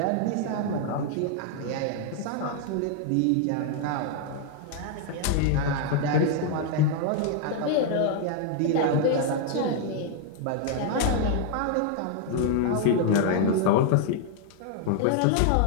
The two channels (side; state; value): both; different; correlation 0.00